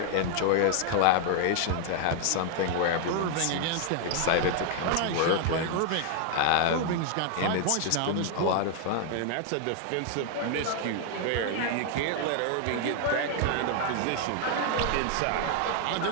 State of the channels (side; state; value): both; different; correlation 0.00